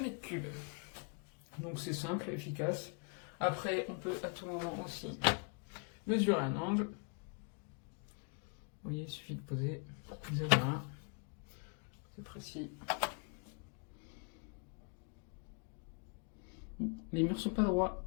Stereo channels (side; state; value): right; quieter; 38.3 dB